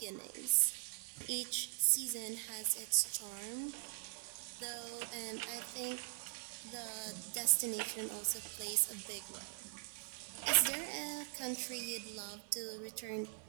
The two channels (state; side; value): silent; left; 50 dB below the other